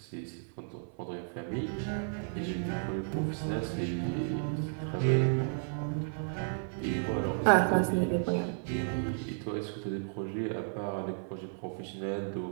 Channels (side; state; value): left; silent; 56 dB below the other